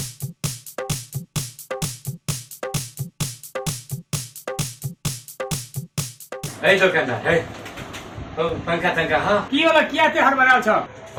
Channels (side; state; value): both; identical; correlation 1.00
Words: दुकानदार है पंखा तंखा हाँ की होला किया ते हड़बड़ाल छ